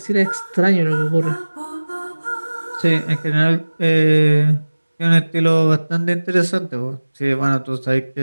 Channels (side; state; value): both; inverted; correlation -1.00